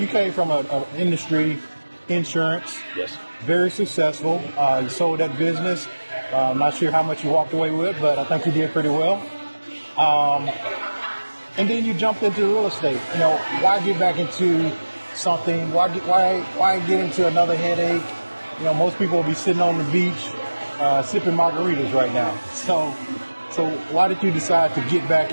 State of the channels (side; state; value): both; inverted; correlation -1.00